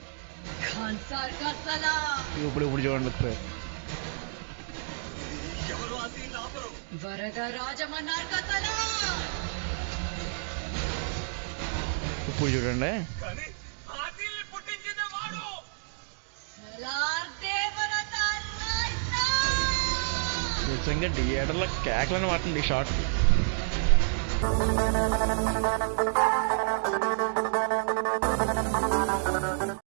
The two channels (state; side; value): silent; left; digital silence